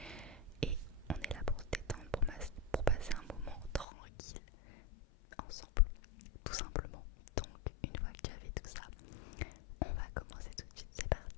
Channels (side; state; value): right; drops out; at 3.9 s